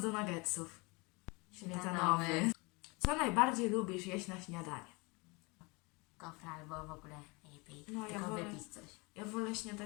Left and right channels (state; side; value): quieter; right; 27.6 dB